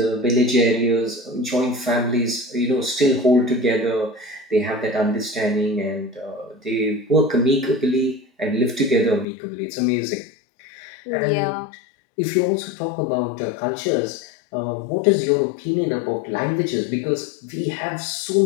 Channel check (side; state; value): right; drops out; at 9.2 s